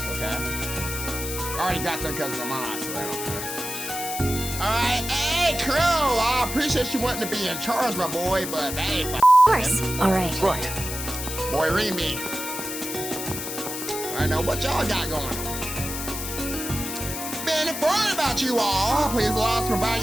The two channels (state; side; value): noise; left; hiss, 6 dB below the sound